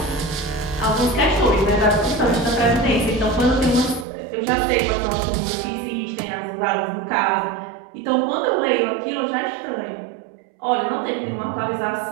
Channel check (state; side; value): drops out; left; at 4.0 s